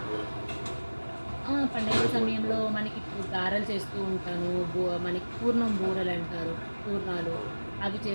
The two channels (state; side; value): inverted; both; correlation -1.00